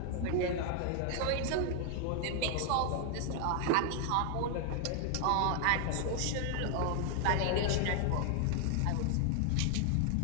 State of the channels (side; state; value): both; different; correlation 0.00